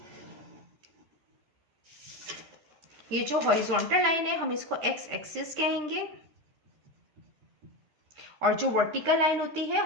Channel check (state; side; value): late; left; 13 ms